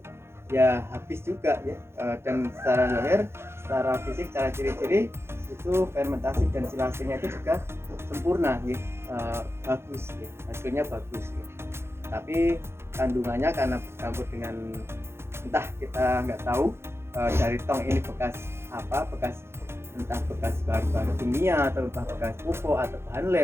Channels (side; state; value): left; late; 0.12 ms